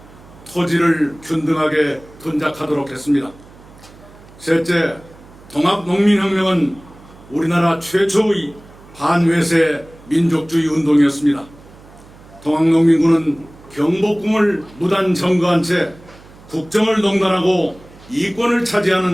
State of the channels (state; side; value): noise; right; hum, 23 dB below the sound